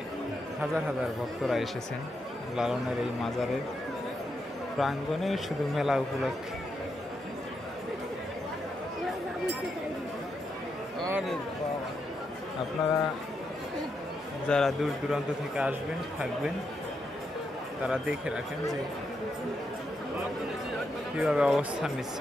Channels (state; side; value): normal; both; correlation 0.83